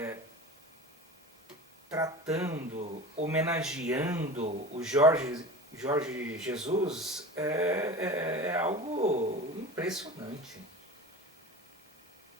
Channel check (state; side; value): normal; both; correlation 0.33